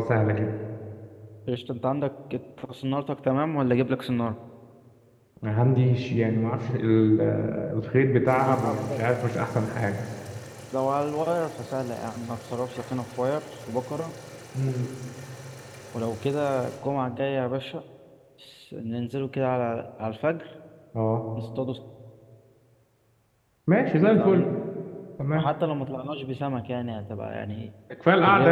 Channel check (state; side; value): identical; both; correlation 1.00